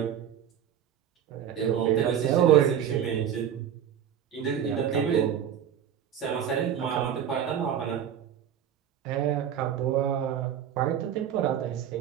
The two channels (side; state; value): left; quieter; 9.3 dB